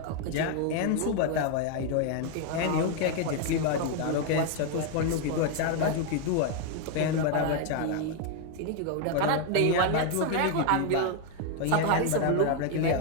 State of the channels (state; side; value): different; both; correlation 0.00